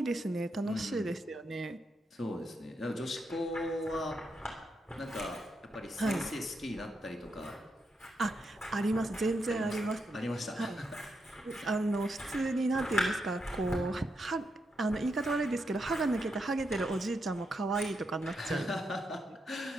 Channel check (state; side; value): normal; both; correlation 0.82